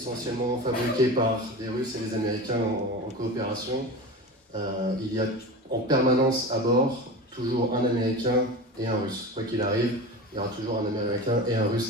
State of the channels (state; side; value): normal; both; correlation 0.29